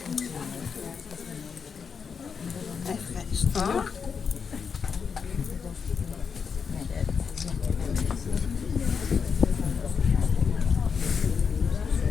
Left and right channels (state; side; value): quieter; right; 6.1 dB